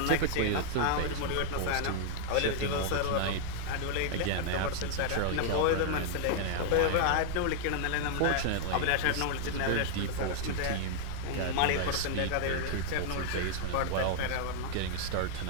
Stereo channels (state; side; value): different; both; correlation -0.01